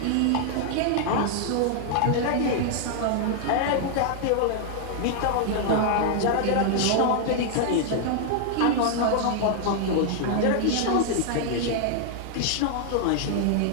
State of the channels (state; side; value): different; both; correlation -0.01